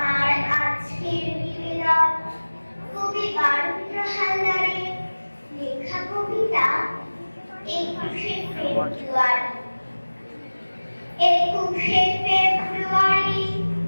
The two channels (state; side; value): inverted; both; correlation -1.00